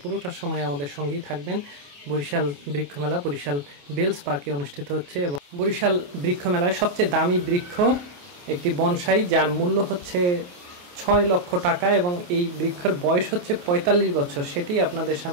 পুরোটা সময় আমাদের সঙ্গেই থাকবেন। বরিশাল বৃক্ষ মেলা বরিশাল বেলস পার্কে অনুষ্ঠিত হচ্ছে এবং বরিশাল বৃক্ষ মেলায় সবচেয়ে দামি বৃক্ষ একটি বনসাই, যার মূল্য হচ্ছে 6 লক্ষ টাকা এবং এই বৃক্ষের বয়স হচ্ছে 45 বছর। সেটি আপনাদের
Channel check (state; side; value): late; left; 28 ms